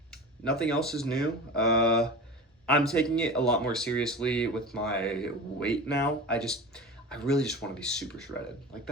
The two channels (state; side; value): normal; both; correlation 0.31